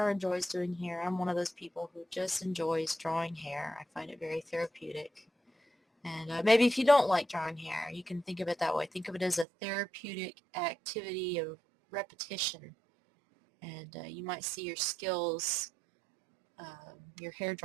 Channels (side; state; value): left; drops out; at 9.5 s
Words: or enjoys doing hair. I'm one of those people who just enjoys drawing hair. I find it very therapeutic. And maybe if you don't like drawing hair, you can think of it that way. Think of it as a therapeutic activity of repetition. And you might see your skills, your hair